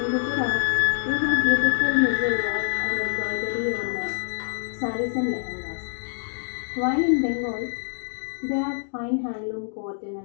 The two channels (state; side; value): silent; right; digital silence